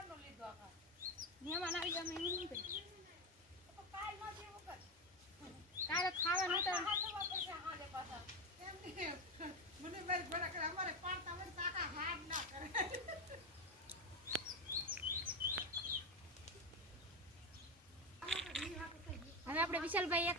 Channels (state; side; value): normal; both; correlation 0.14